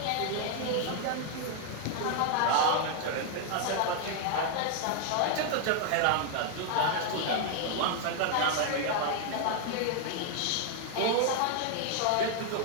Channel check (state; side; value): different; both; correlation 0.00